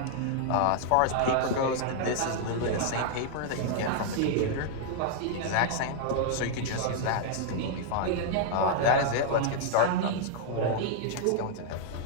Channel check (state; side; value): different; both; correlation -0.01